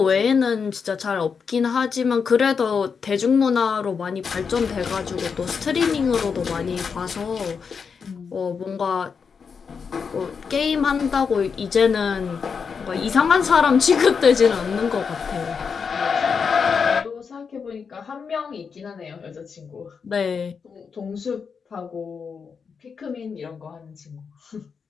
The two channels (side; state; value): right; quieter; 5.9 dB